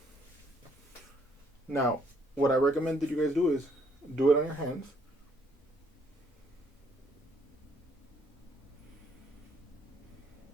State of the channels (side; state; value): both; normal; correlation 0.67